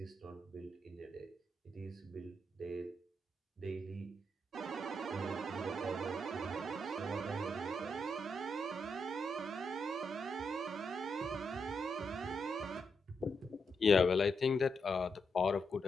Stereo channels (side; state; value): both; normal; correlation 0.82